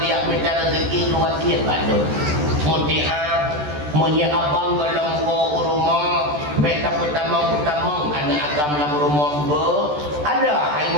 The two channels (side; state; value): left; late; 14 ms